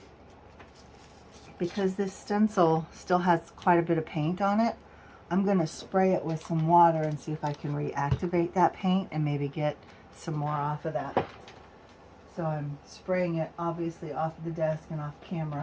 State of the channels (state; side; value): identical; both; correlation 1.00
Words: Because this stencil still has quite a bit of paint on it, I'm going to spray it with some water and see if I can reactivate that paint and maybe get some more off of that. So I'm spraying it obviously off of the desk and off